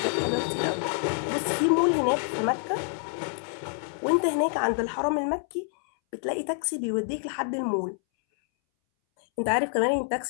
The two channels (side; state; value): right; silent; 60 dB below the other